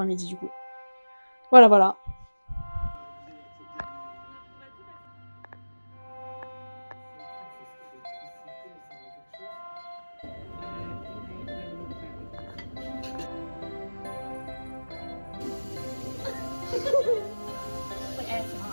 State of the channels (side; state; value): both; inverted; correlation -1.00